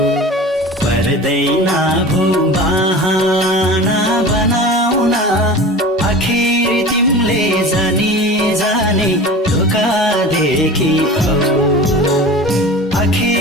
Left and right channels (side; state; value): both; normal; correlation 0.36